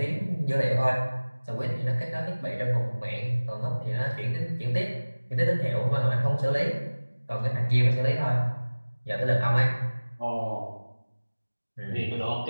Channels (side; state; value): both; inverted; correlation -1.00